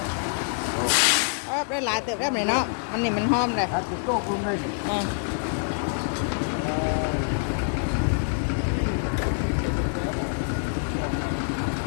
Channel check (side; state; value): right; silent; digital silence